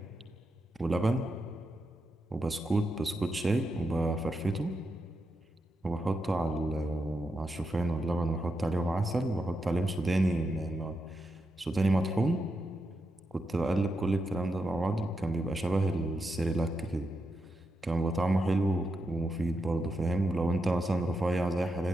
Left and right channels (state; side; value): normal; both; correlation 0.85